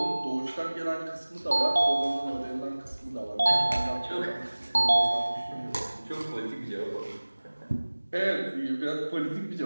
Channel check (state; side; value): inverted; both; correlation -1.00